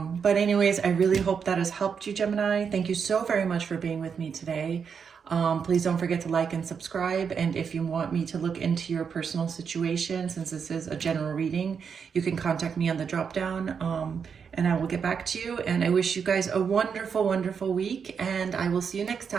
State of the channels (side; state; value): left; quieter; 6.5 dB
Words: But anyways, I really hope that has helped you, Gemini. Thank you so very much for being with me today. Please don't forget to like and subscribe. And if you want me to look into your personal situation, since this is a general reading, you can contact me on the drop down, and I will get back to you. And I wish you guys a wonderful, wonderful week, and I will see you next